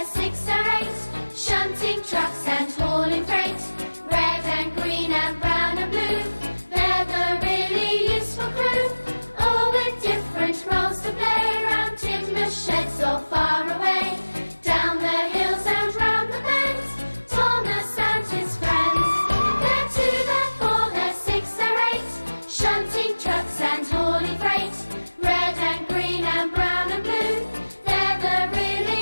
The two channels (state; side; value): inverted; both; correlation -1.00